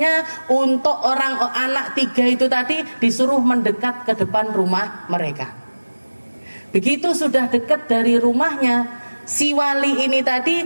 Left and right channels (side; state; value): both; inverted; correlation -1.00